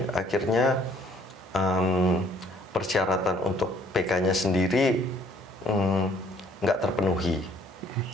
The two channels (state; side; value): normal; both; correlation 0.61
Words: akhirnya persyaratan untuk PK-nya sendiri nggak terpenuhi.